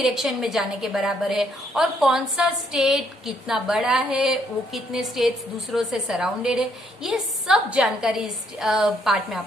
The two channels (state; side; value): normal; both; correlation 0.70